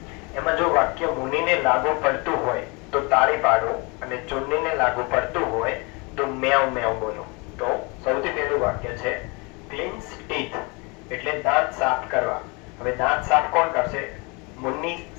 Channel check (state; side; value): quieter; right; 29.2 dB